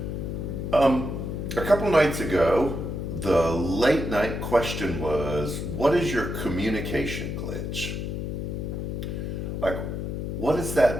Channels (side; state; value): left; noise; hum, 4 dB below the sound